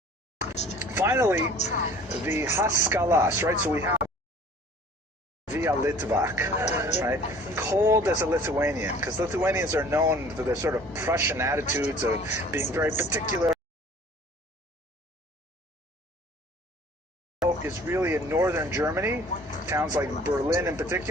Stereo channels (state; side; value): normal; both; correlation 0.49